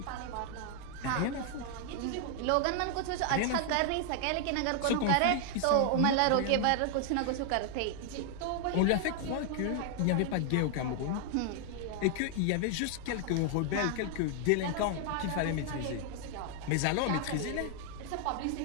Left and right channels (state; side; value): different; both; correlation 0.00